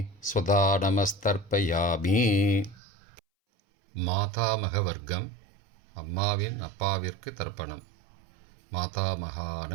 ஸ்வதா நமஸ்தர்ப்பயாமி. மாதாமக வர்க்கம். அம்மாவின் அப்பாவிற்கு தர்ப்பணம். மாதாமகான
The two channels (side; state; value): left; drops out; at 2.8 s